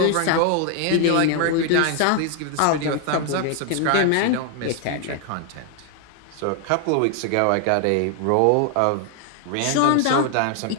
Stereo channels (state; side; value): different; both; correlation 0.00